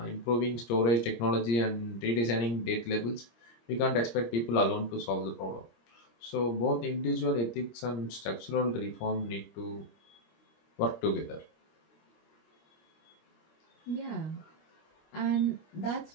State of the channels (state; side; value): late; right; 26 ms